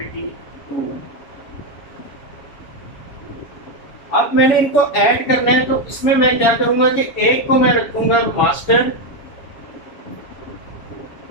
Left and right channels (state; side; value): late; right; 7.2 ms